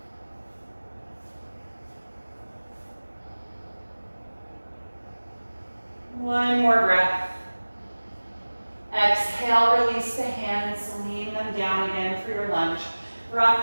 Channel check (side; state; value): both; inverted; correlation -1.00